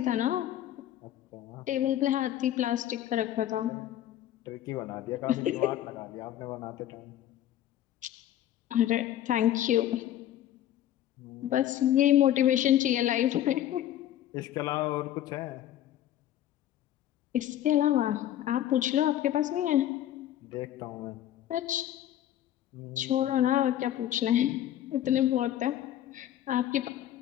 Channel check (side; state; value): right; quieter; 12.2 dB